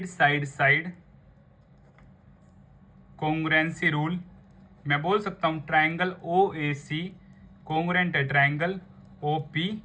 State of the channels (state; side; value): identical; both; correlation 1.00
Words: side side congruency rule मैं बोल सकता हूँ triangle O A C congruent है ट्रायंगल ओ पी